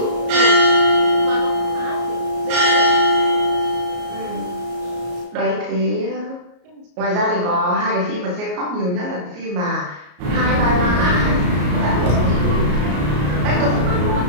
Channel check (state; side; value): late; left; 33 ms